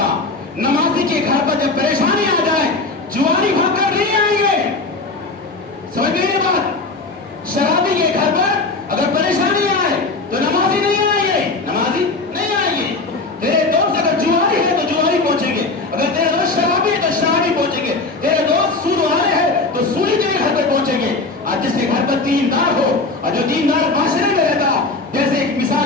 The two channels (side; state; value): right; quieter; 3.5 dB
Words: نمازی کے گھر پر جب پریشانی آ جائے جوانی بھاگ کر نہیں آئیں گے. سمجھ میں یہ بات؟ شرابی کے گھر پر اگر پریشانی آئے تو نمازی نہیں آئیں گے, نمازی نہیں آئیں گے. تیرے دوست اگر جواری ہے تو جواری پہنچیں گے, اگر تیرے دوست شرابی ہے تو شرابی پہنچیں گے, تیرے دوست سود والے ہیں تو سودی تیرے گھر پہ پہنچیں گے. اور جس کے گھر پر دیندار ہو اور جو دیندار معاشرے میں رہتا, جیسے ایک